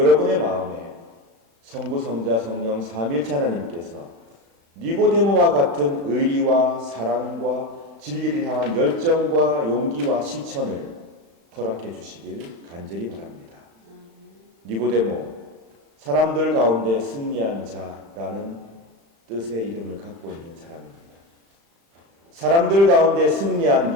마음에 성부, 성자, 성령 삼일체 하나님께서 니고데모와 같은 의리와 사랑과 진리를 향한 열정과 용기와 실천을 허락해 주시길 간절히 바랍니다. 니고데모, 사람들 가운데 승리한 자라는 뜻의 이름을 갖고 있는 사람입니다. 사람들 가운데 승리한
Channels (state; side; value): late; left; 35 ms